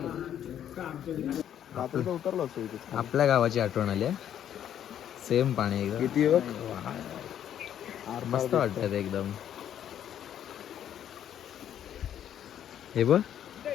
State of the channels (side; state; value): right; quieter; 10.2 dB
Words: उतरलो असतो इथे. आपल्या गावाची आठवण आली. सेम पाणी एकदम. किती मस्त वाटत एकदम. हे बघ